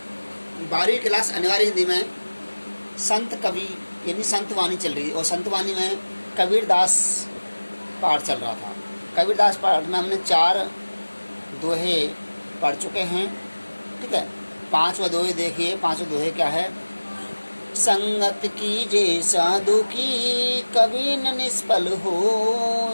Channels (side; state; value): both; inverted; correlation -1.00